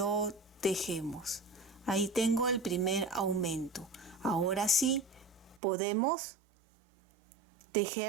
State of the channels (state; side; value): drops out; left; at 5.6 s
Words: tejemos. Ahí tengo el primer aumento. Ahora sí podemos